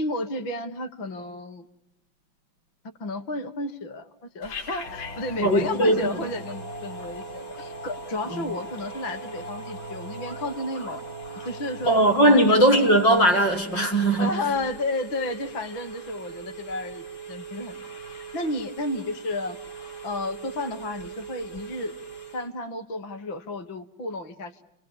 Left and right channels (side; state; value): right; late; 5.6 ms